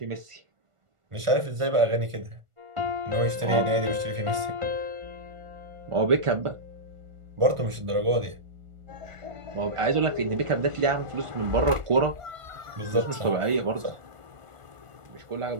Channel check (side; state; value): left; late; 1.4 ms